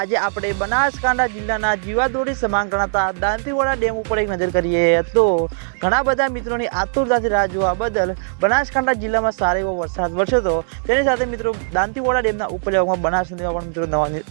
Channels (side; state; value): left; silent; digital silence